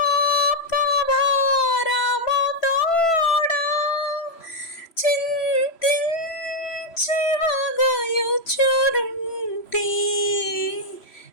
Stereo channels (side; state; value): right; late; 3.0 ms